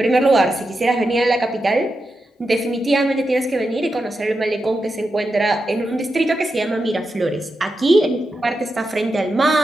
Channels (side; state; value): both; normal; correlation 0.88